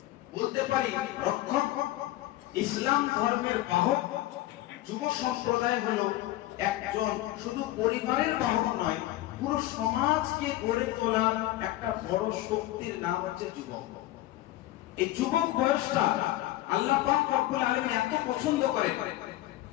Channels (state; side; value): quieter; right; 16.0 dB